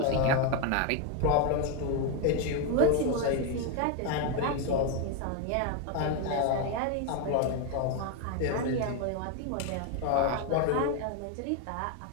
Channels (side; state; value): both; different; correlation 0.01